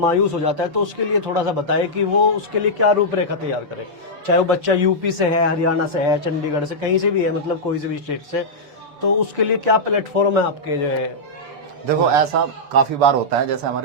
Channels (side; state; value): left; late; 6.9 ms